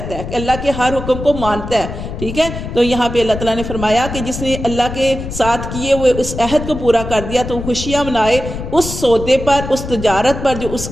है, कि अल्लाह के हर हुक्म को मानता है, ठीक है। तो यहाँ पे अल्लाह ताला ने फरमाया कि जिसने अल्लाह के साथ किए हुए उस अहद को पूरा कर दिया तो खुशियाँ मनाए उस सौदे पर, उस तजारत पर जो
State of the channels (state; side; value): noise; left; rumble, 8 dB below the sound